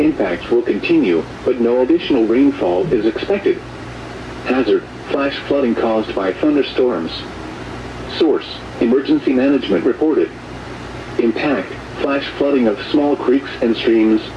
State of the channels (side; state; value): both; identical; correlation 1.00